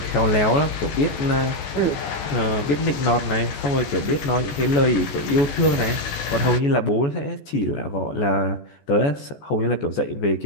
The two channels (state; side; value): late; right; 14 ms